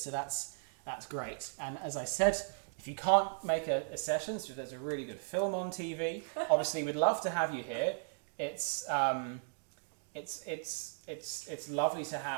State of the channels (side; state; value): left; silent; digital silence